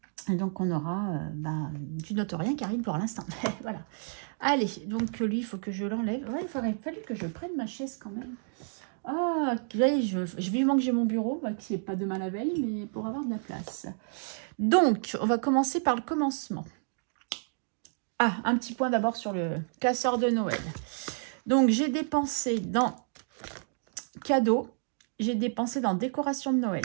Et donc, on aura, tu notes rien, Karine, pour l'instant. Voilà. Allez, donc, lui, il faut que je l'enlève. Ouais, il aurait fallu que je prenne ma chaise quand même. Ah, je vivement que j'ai mon bureau, qui n'est pas demain la veille, mais pour avoir de la place. Donc, on va commencer par le commencement. Ah, un petit point d'abord sur le classeur de Noël. Donc, j'ai dépensé dans cadeaux, j'ai dépensé dans décoration de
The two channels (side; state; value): left; silent; digital silence